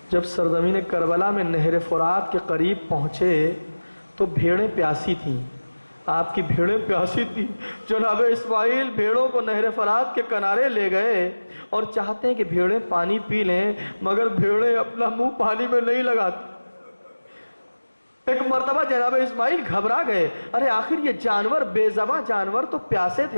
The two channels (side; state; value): both; inverted; correlation -1.00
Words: جب سرزمین کربلا میں نہر فرات کے قریب پہنچے تو بھیڑیں پیاسی تھیں، آپ کی بھیڑیں پیاسی تھیں۔ جناب اسماعیل بھیڑوں کو نہر فرات کے کنارے لے گئے اور چاہتے ہیں کہ بھیڑیں پانی پی لیں، مگر بھیڑیں اپنا منہ پانی میں نہیں لگاتی۔ ایک مرتبہ جناب اسماعیل گھبرا گئے، ارے آخر یہ جانور، بے زباں جانور تو پیاسے